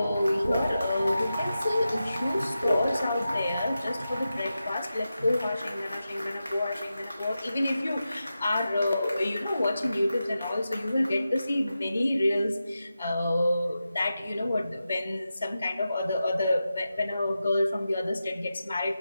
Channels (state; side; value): inverted; both; correlation -0.91